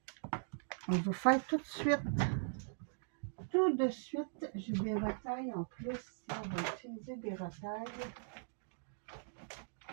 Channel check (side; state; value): left; silent; digital silence